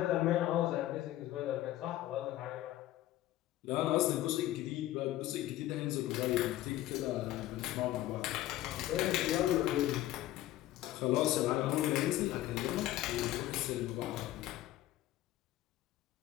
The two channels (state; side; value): quieter; right; 14.7 dB